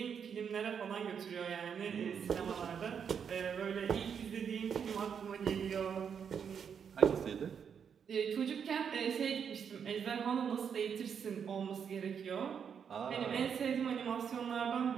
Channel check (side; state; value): left; quieter; 7.3 dB